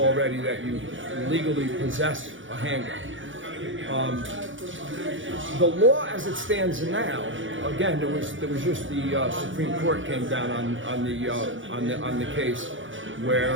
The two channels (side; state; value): left; late; 0.56 ms